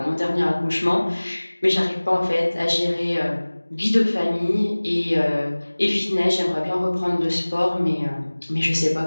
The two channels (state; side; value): inverted; both; correlation -1.00